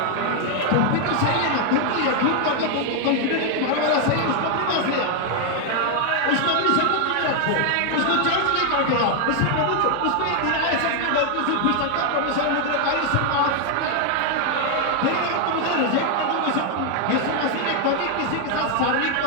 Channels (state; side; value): different; both; correlation 0.00